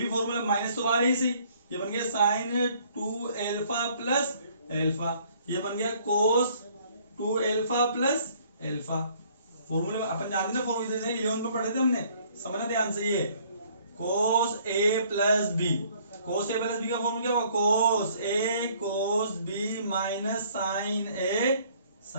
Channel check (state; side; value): inverted; both; correlation -0.60